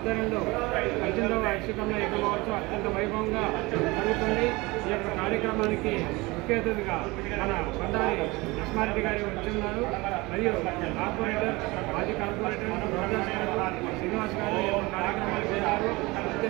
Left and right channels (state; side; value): quieter; left; 23.1 dB